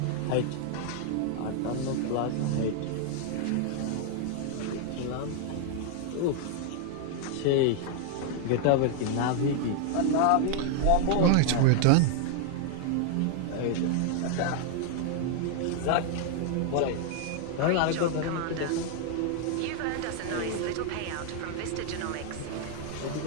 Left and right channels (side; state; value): both; different; correlation 0.00